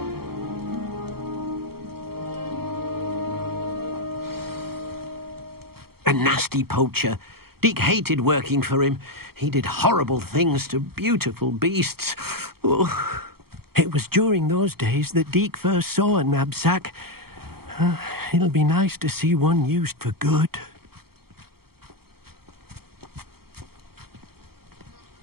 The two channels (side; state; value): left; late; 0.95 ms